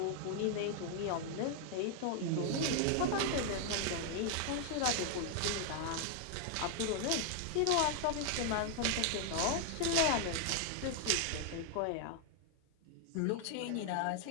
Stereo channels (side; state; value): both; different; correlation 0.00